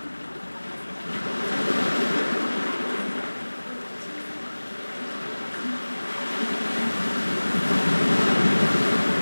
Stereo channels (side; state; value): both; inverted; correlation -1.00